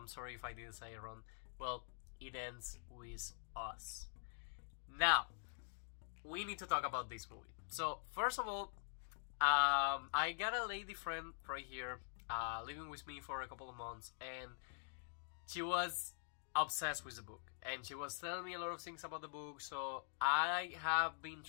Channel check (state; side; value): silent; right; digital silence